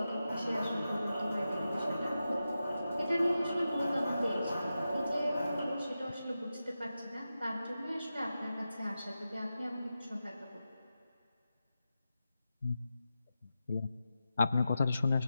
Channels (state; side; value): inverted; both; correlation -0.91